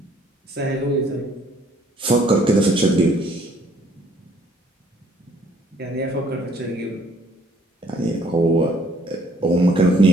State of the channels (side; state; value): both; normal; correlation 0.62